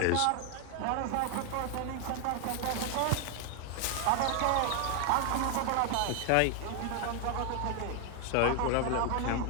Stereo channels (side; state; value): both; different; correlation 0.00